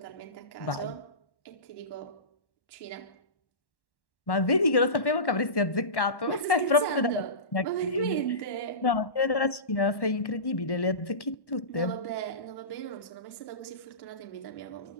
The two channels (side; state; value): right; late; 1.1 ms